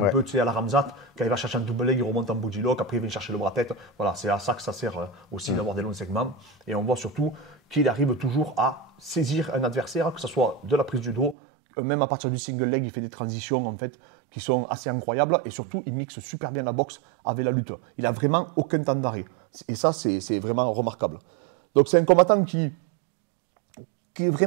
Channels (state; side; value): drops out; left; at 11.4 s